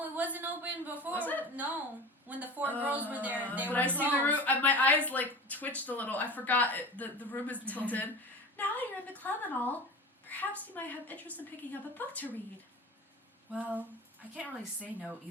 it wasn't open before. Was it? No. When the four girls were there, they but were I see the room. closed. My eyes like twitched a little. I forgot it, the room is tilted. Now that you're in the club and all, perhaps you might have interest in picking up a book to read. Well, I can't really say no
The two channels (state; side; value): normal; both; correlation 0.34